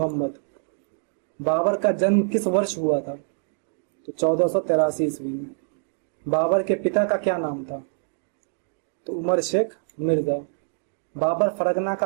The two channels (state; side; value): silent; left; digital silence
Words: बाबर का जन्म किस वर्ष हुआ था? तो 1483 ईस्वी में। बाबर के पिता का क्या नाम था? तो उमर शेख मिर्जा। बाबर फरगना